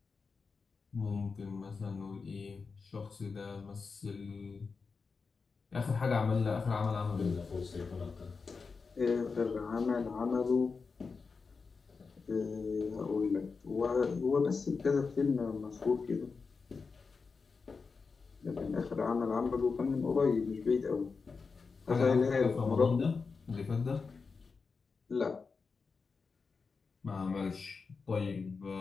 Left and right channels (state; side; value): quieter; right; 4.8 dB